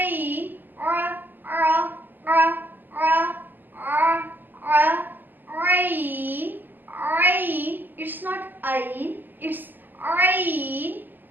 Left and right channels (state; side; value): late; left; 0.089 ms